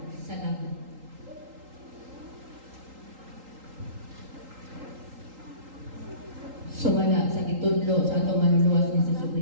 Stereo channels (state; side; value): late; left; 3.8 ms